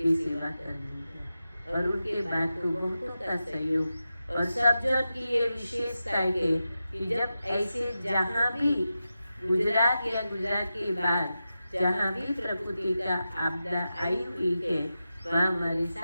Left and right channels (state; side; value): inverted; both; correlation -0.91